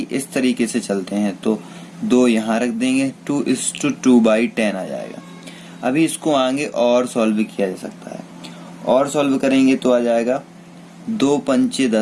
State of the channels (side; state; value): both; identical; correlation 1.00